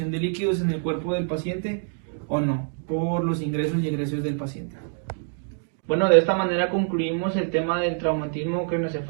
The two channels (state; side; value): silent; left; 61 dB below the other